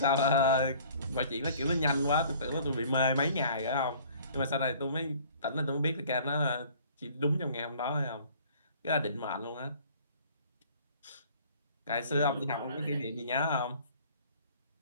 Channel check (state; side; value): inverted; both; correlation -0.52